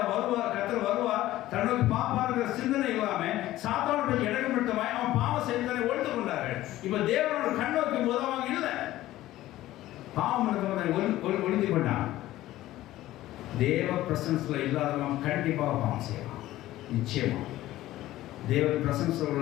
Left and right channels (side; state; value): right; quieter; 15.3 dB